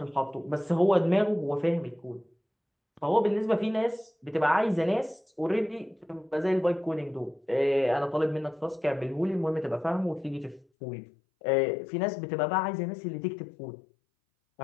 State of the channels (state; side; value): drops out; right; at 10.7 s